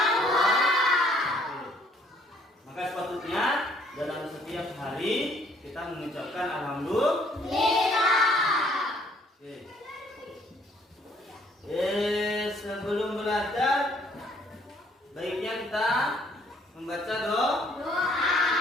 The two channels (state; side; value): normal; both; correlation 0.62